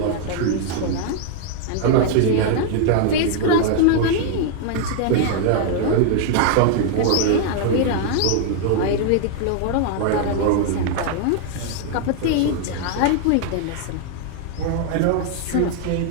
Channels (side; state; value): both; different; correlation 0.00